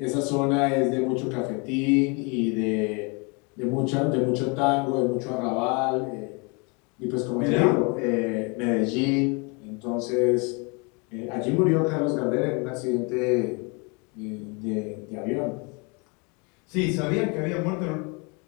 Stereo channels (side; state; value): right; quieter; 31.5 dB